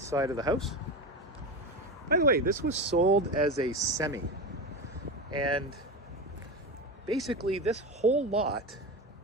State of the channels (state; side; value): normal; both; correlation 0.22